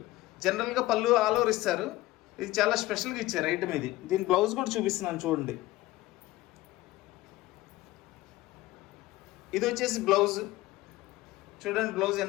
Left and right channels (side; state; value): right; quieter; 17.6 dB